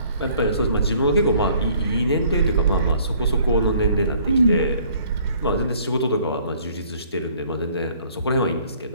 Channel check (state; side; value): inverted; both; correlation -0.58